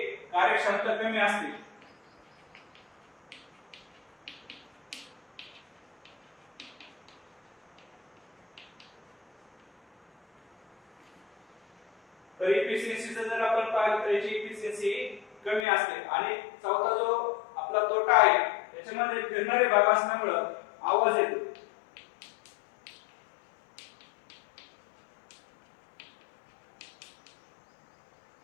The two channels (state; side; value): drops out; right; at 15.7 s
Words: कार्यक्षमता कमी असते. तर इफिशियन्सीचं जर आपण पाहिलं तर याची इफिशियन्सी कमी असते. आणि चौथा जो आपला तोटा आहे त्याच्यामध्ये फिरणारे भाग असल्यामुळे आवाज येतो.